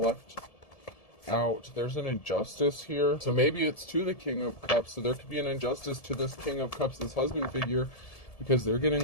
left out. There's an injustice here. So maybe it's to the King of Cups. So there could be an injustice to this King of Cups, this husband figure, because they're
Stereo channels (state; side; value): late; right; 1.7 ms